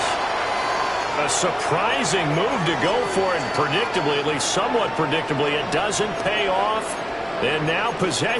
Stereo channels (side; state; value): both; identical; correlation 1.00